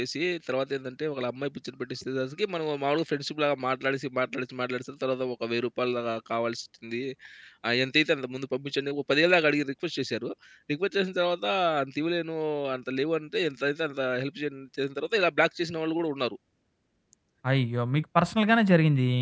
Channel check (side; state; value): both; identical; correlation 1.00